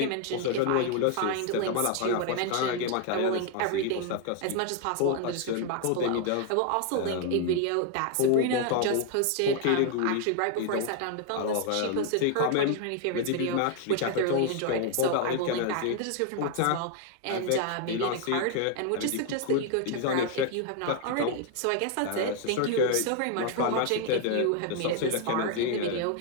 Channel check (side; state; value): both; different; correlation 0.00